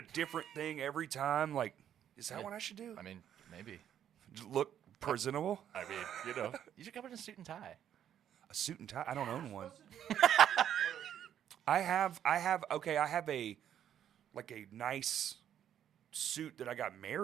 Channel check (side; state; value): left; quieter; 10.0 dB